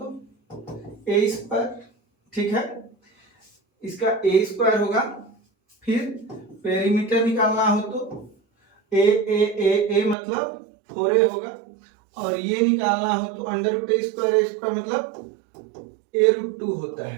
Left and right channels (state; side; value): drops out; left; at 10.2 s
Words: ए स्क्वायर। ठीक है, इसका ए स्क्वायर होगा। फिर पेरीमीटर निकालना हो तो ए ए ए ए मतलब 4a होगा। और ये निकालना हो तो अंडर रूट ए स्क्वायर मतलब ए रूट 2 होता